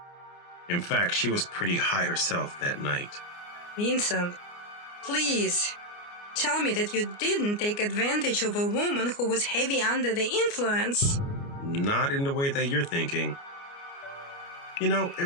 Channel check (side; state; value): right; late; 29 ms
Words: In fact, she was pretty high herself that night. Vincent, please tell me that you didn't take advantage of a woman who was heavy under the influence. Not in the way that you're thinking. You know, it